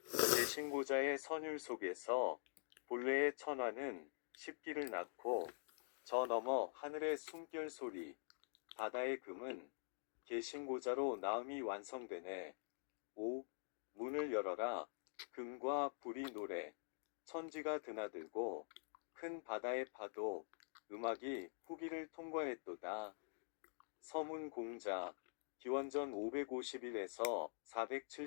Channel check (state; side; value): silent; right; digital silence